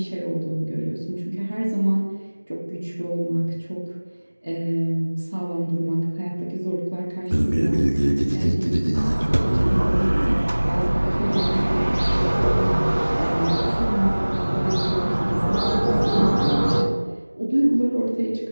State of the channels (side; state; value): both; inverted; correlation -1.00